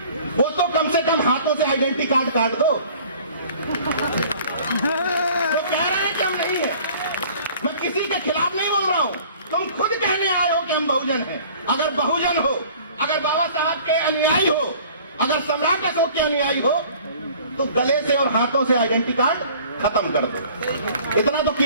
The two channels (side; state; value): both; inverted; correlation -0.50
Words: वो तो कम से कम हाथों से आइडेंटिटी कार्ड काट दो। वो कह रहे हैं कि हम नहीं है, मैं किसी के खिलाफ नहीं बोल रहा हूं, तुम खुद कहने आए हो कि हम बहुजन हैं। अगर बहुजन हो, अगर बाबा साहब के अनुयायी हो, अगर सम्राट अशोक के अनुयायी हो, तो गले से और हाथों से आइडेंटिटी कार्ड खत्म कर दो। इतना तो